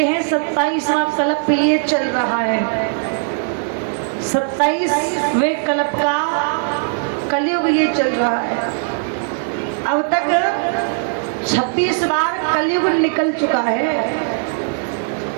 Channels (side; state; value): left; silent; digital silence